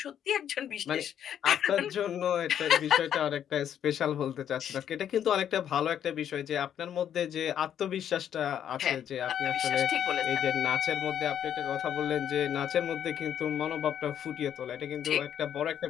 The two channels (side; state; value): right; quieter; 9.6 dB